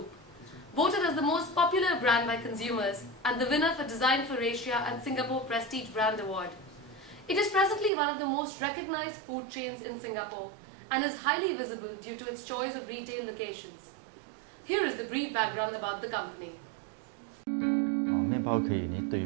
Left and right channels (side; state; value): left; drops out; at 7.9 s